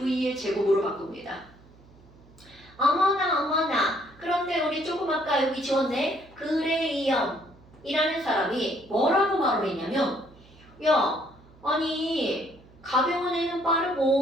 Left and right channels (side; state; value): right; noise; hum, 25 dB below the sound